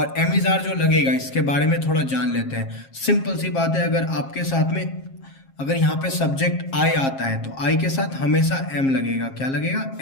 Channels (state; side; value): late; right; 7.4 ms